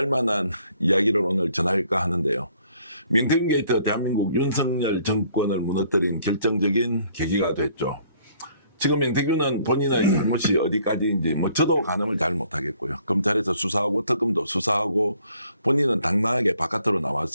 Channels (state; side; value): inverted; both; correlation -0.62